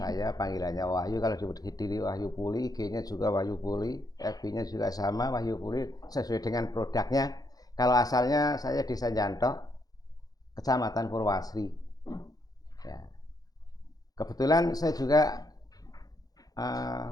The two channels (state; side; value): late; right; 0.18 ms